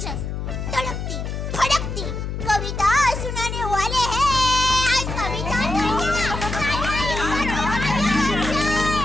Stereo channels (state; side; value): noise; left; hum, 5 dB below the sound